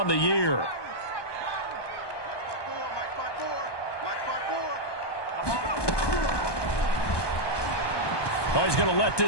the year. Oh, he's going to let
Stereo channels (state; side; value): late; right; 1.2 ms